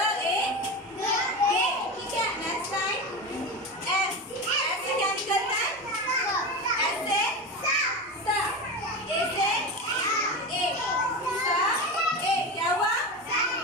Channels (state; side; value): normal; both; correlation 0.23